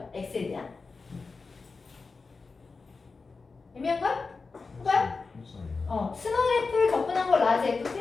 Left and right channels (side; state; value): right; quieter; 4.3 dB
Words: x에 대한? 애매한걸? 해봐요? 스몰 f를 접근한 걸 라지